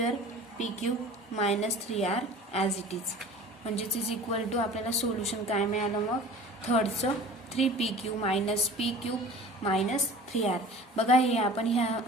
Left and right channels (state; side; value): normal; both; correlation 0.42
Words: P Q minus 3r as it is म्हणजेच इज इक्वल टू आपल्याला सोल्युशन काय मिळालं मग थर्डचं 3pq minus P cube minus 3r बघा हे आपण